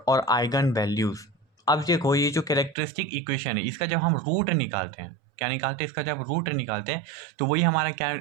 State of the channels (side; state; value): left; drops out; at 2.8 s